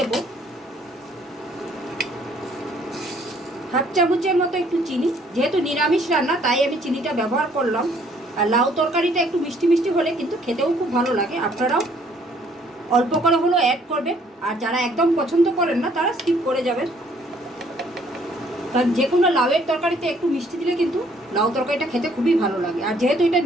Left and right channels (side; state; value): both; normal; correlation 0.63